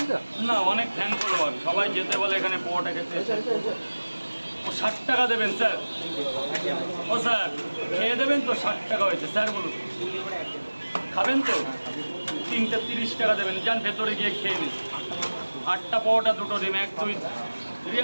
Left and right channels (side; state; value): both; inverted; correlation -1.00